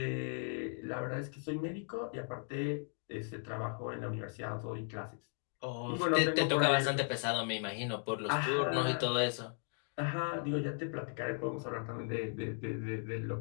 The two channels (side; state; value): right; silent; 53 dB below the other